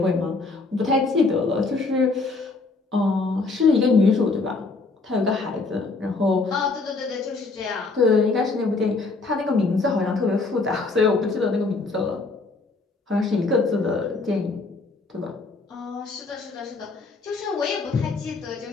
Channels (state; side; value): quieter; right; 3.7 dB